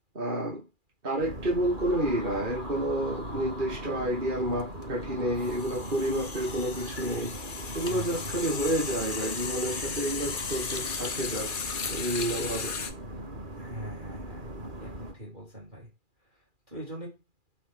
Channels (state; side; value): late; left; 2.4 ms